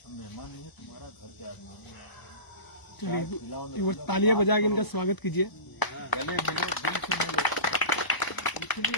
हम मेहमान नहीं है, तुम्हारा घर के आदमी है। चलिए एक बार तालियां बजा के इनका स्वागत कीजिए। गले मिलो, दिल से मिलो।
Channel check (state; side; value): late; right; 1.0 ms